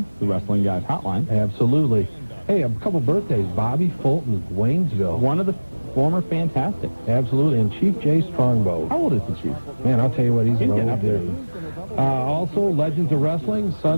the Wrestling Guys Hotline. Absolutely. Hey, a couple birthdays. Bobby Fulton, Waynesville. One of the former Fantastic. Absolutely. And Chief Jay Strongbow. How old is the Chief? Man, I'll tell you what, he's an old dude. Also, Legends of Wrestling,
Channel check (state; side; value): inverted; both; correlation -1.00